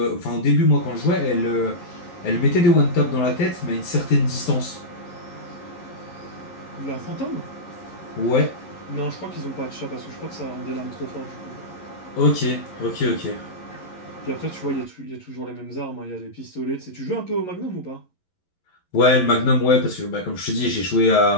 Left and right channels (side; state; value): right; late; 11 ms